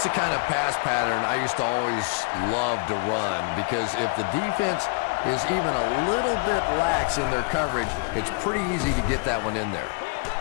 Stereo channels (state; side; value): quieter; right; 30.3 dB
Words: the kind of pass pattern I used to always love to run, because if the defense is even a little bit lax in their coverage, it's pretty easy to get that one in there.